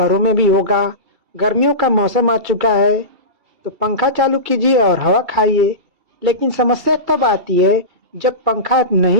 में भी होगा। गर्मियों का मौसम आ चुका है तो पंखा चालू कीजिए और हवा खाइए। लेकिन समस्या तब आती है जब पंखा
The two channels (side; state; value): left; late; 2.7 ms